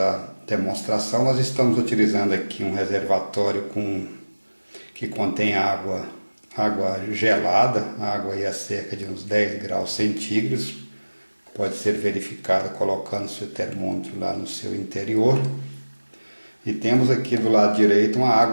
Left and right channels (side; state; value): both; inverted; correlation -1.00